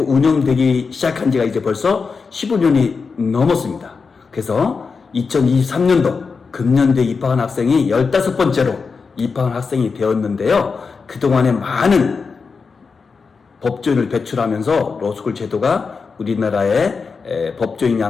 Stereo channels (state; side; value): quieter; right; 5.0 dB